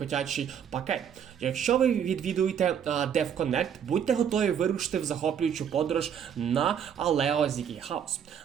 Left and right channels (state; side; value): quieter; left; 8.4 dB